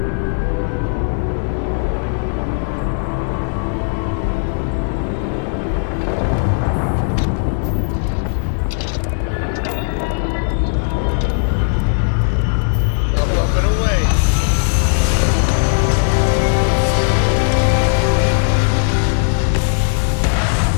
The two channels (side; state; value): right; silent; 64 dB below the other